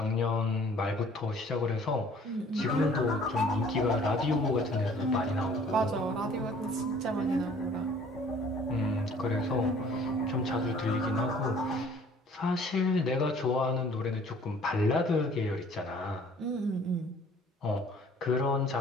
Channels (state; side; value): normal; both; correlation 0.54